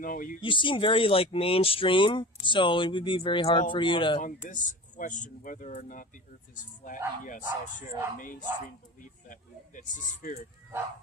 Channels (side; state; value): both; normal; correlation 0.35